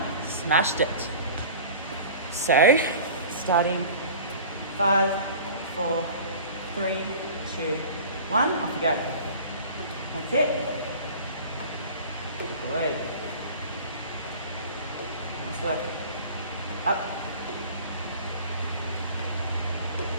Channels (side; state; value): both; inverted; correlation -0.41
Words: Smashed it. So, starting 5, 4, 3, 2, 1. Off you go. That's it. Good. Nice work. Up.